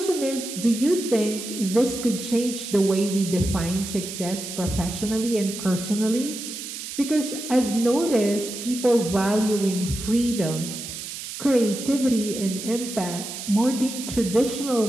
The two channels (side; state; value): right; noise; hiss, 8 dB below the sound